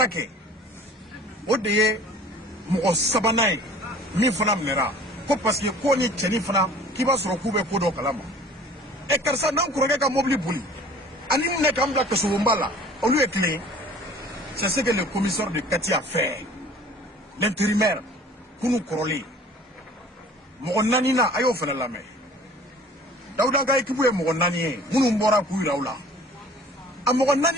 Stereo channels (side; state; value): both; normal; correlation 0.48